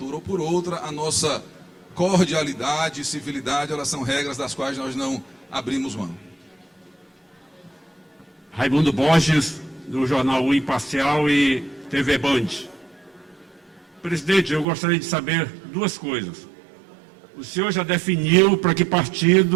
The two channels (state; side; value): drops out; left; at 14.7 s